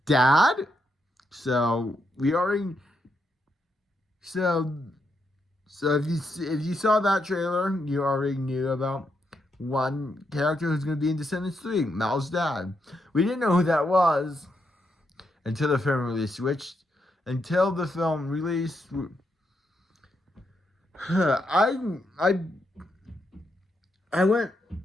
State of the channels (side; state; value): both; normal; correlation 0.81